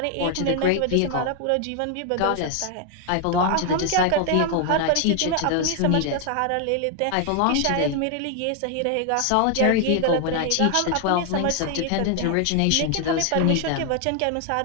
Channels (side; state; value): both; different; correlation 0.00